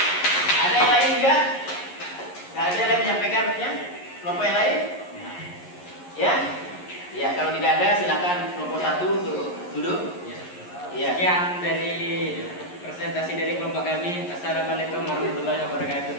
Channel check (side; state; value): right; late; 11 ms